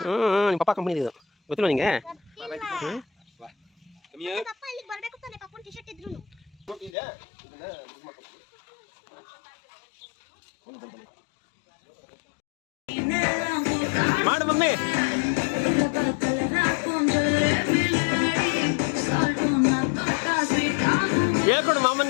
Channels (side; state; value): right; drops out; at 6.9 s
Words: ನಿಮ್ಮ ಪಪ್ಪ ಕಂಪ್ನಿ ಇದು ಗೊತ್ತಿಲ್ಲ ನಿಂಗೆ? ಪಪ್ಪ ಇಲ್ಲಿಗೆ ಬರಬೇಕು ತಾನೆ ಪಪ್ಪನ ಟಿ ಶರ್ಟ್ ಇದ್ರು ಮಾಡು ಮಮ್ಮಿ. ಹೇಳ್ಕೊಡು